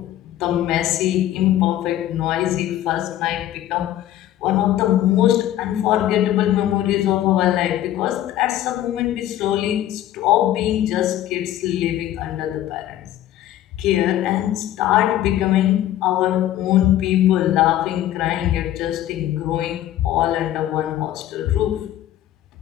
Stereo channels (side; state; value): right; quieter; 12.8 dB